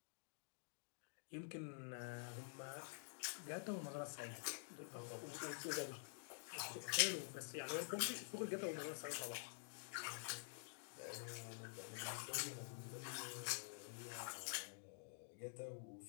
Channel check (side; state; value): right; silent; digital silence